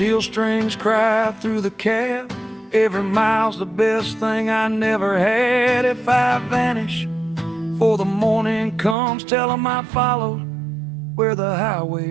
strings cry through the cab, every mile's the best thing I never had. If I vanish before the morning comes, tell 'em I followed where the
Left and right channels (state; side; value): drops out; left; at 9.0 s